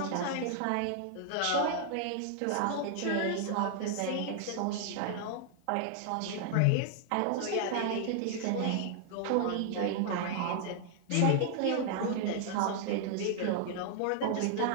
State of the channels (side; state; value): both; different; correlation 0.00